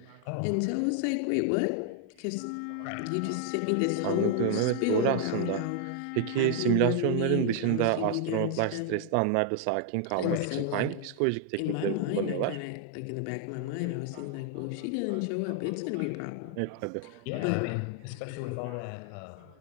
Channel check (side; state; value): both; different; correlation 0.00